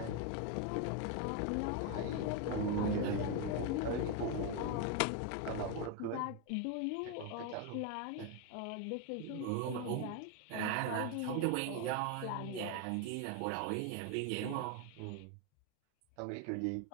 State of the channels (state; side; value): different; both; correlation 0.01